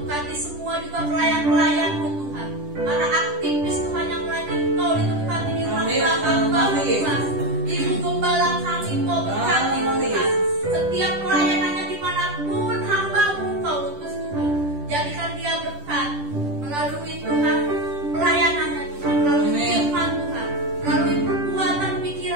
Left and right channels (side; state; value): left; late; 10 ms